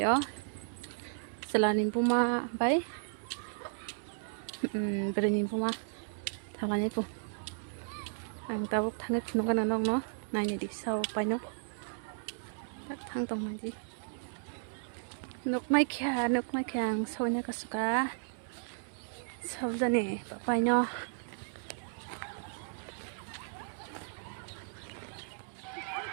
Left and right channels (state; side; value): silent; left; digital silence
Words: ó selain puma bay berani puma thằng này pun anh ta bảo thằng này nó cái nào nó này đi sau bay nó thằng tông này đi nóc mai kia sau này có suka sau giờ này bay nó